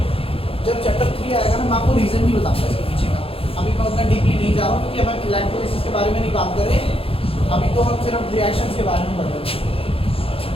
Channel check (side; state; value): right; late; 0.27 ms